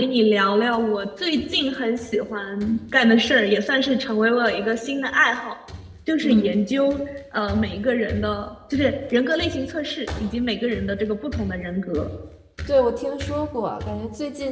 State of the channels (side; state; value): both; identical; correlation 1.00